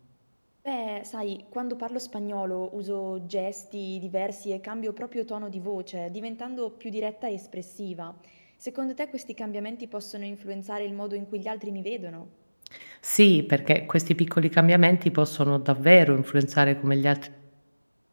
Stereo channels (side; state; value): both; inverted; correlation -1.00